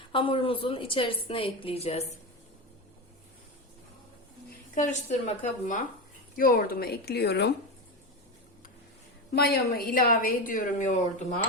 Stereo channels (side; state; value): both; normal; correlation 0.18